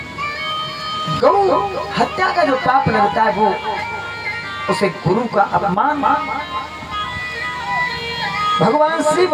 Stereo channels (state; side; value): identical; both; correlation 1.00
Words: गौ हत्या का जो पाप लगता है, वो उसे गुरु का अपमान, भगवान शिव